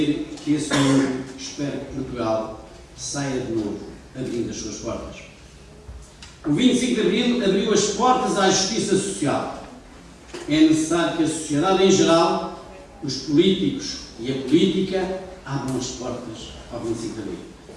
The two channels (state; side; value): identical; both; correlation 1.00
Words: que esse mundo espera que Portugal saia de novo, abrindo as suas portas. O 25 de Abril abriu as portas à justiça social. É necessário que a sociedade em geral, os políticos e a política abram as portas ao 25 de Abril.